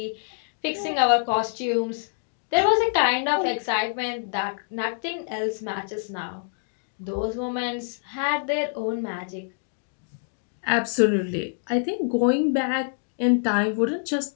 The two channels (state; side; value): silent; right; digital silence